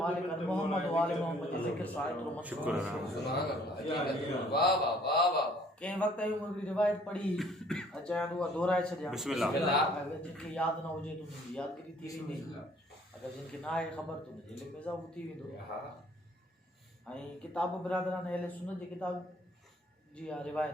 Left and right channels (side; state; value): both; normal; correlation 0.58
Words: मालिक मोहम्मद वाले मोहम्मद जे ज़िक्र सां एतिरो शुक्र कंहिं वक़्तु हिकिड़ी रिवायत पढ़ी अचां उहा दोहराए छॾियां बिस्मिल्लाह। अगरि जिनखे यादि न हुजे त उनजी यादगिरी थी वेंदी अगरि जिनखे न आहे ख़बर त उनजे इल्म में इज़ाफ़ो थी वेंदो ऐं किताब बिरादरान अहले सुन्नत जे किताब जी आहे